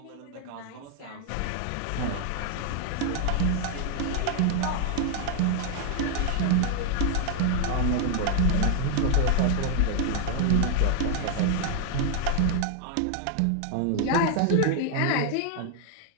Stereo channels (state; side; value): different; both; correlation 0.00